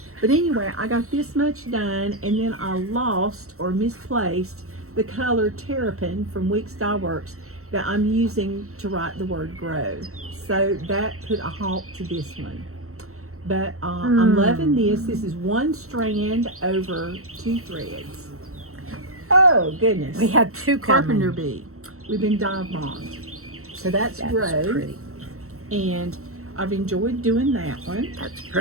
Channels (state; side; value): late; left; 0.63 ms